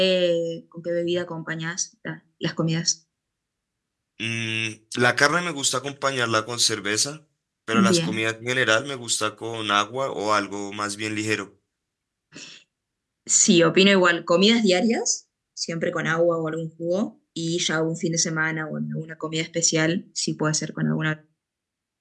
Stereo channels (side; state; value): both; identical; correlation 1.00